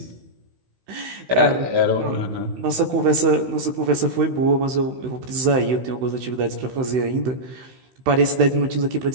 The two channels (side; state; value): left; late; 16 ms